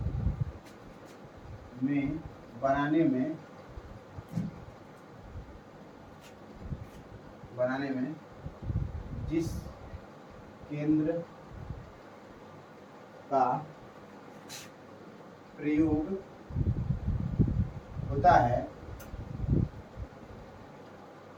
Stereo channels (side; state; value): both; identical; correlation 1.00